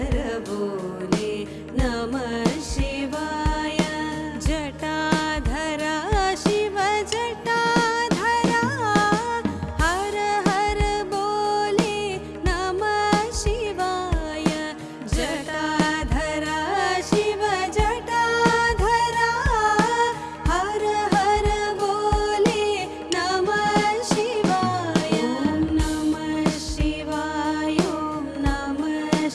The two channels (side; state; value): both; identical; correlation 1.00